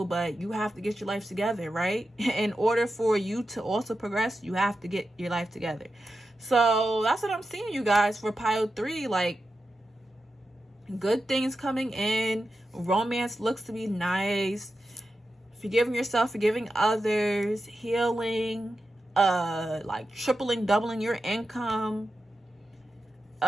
but you have to get your life together, right? In order for you to also progress, you have to get your life together. So that's what I'm seeing, you guys, for pile 3. Like, good things coming in. Romance looks to be nice. Forgiving yourself, forgiving others, healing, like tripling, doubling your income.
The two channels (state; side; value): normal; both; correlation 0.90